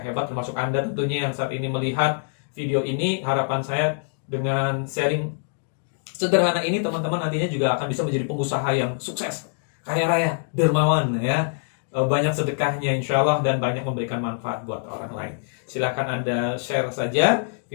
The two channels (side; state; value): right; silent; digital silence